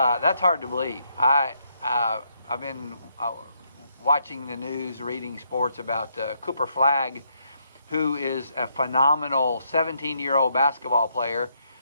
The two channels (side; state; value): both; inverted; correlation -0.75